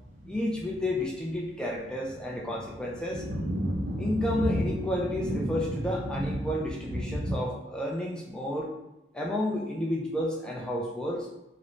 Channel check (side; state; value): both; normal; correlation 0.76